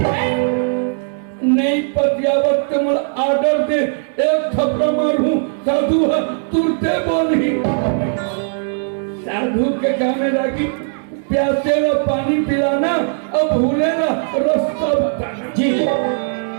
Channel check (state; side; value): silent; left; digital silence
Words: नहीं पतियावत मुझे आर्डर दे एक थप्पड़ मारूं साधु तुरते बोली साधु के गाने लगी प्यासे ला पानी पिलाना और भूले ला रास्ता बताना जी